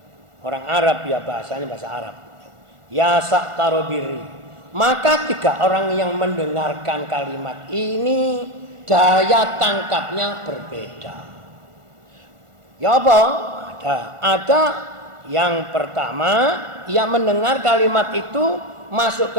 orang Arab ya, bahasanya bahasa Arab. Ya saktarobiri. Maka 3 orang yang mendengarkan kalimat ini daya tangkapnya berbeda. Ya apa? Ada yang pertama, ia mendengar kalimat itu masuk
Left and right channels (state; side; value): late; left; 1.4 ms